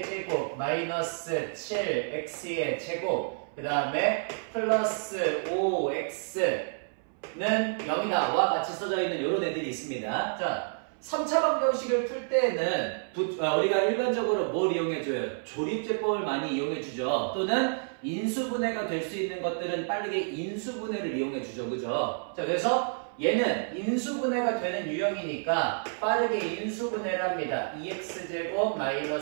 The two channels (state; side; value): silent; left; 58 dB below the other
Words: 마이너스 7x의 제곱 그 다음에 플러스 5x는 0이다 와 같이 써져 있는 이런 애들이 있습니다. 자, 3차 방정식을 풀 때는 우리가 일반적으로 뭘 이용해줘요? 조립제법을 많이 이용해주죠. 또는 인수분해가 될 수 있는 것들은 빠르게 인수분해를 이용해주죠. 그죠? 자, 그래서 얘는 인수분해가 되는 유형이니까 빠르게 인수분해를 합니다. 2x제곱